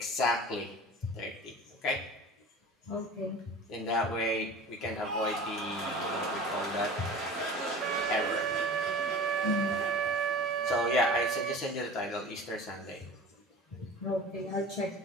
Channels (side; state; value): both; normal; correlation 0.38